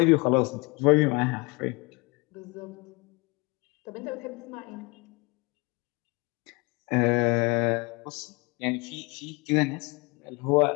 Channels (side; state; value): right; quieter; 27.1 dB